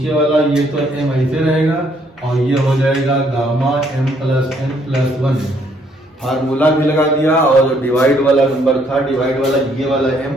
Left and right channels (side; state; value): both; normal; correlation 0.68